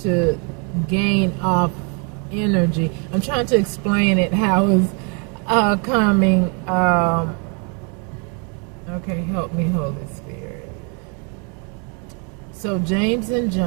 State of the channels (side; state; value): left; quieter; 36.3 dB